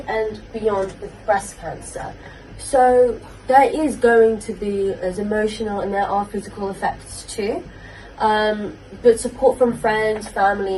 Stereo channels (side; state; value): both; identical; correlation 1.00